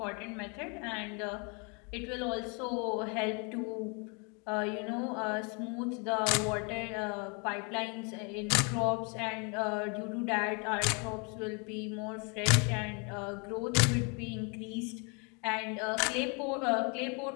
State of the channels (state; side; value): quieter; right; 34.5 dB